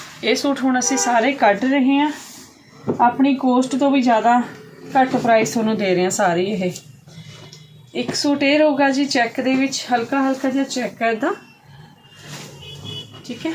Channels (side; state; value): both; identical; correlation 1.00